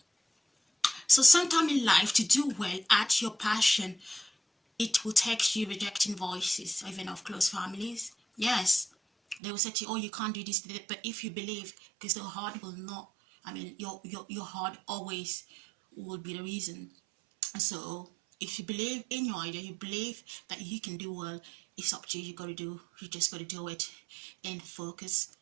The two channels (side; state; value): left; drops out; at 9.4 s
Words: So sometime in life, to do well at your passion, it will take you rejecting voices, even of close families. Yes, they will say to you, oh, you can't do this, but if you believe, because the heart will not, I mean, your heart always will be the reason. So if you believe in your idea, you believe that you can do well, it's up to you. You just gotta do it, and focus